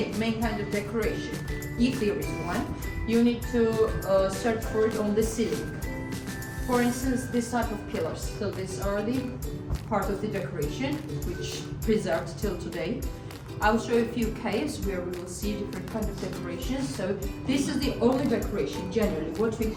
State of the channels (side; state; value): both; identical; correlation 1.00